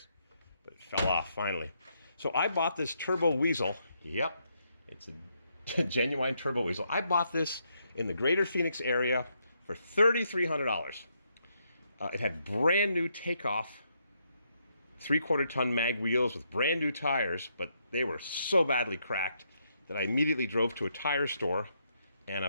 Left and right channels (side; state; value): both; inverted; correlation -0.77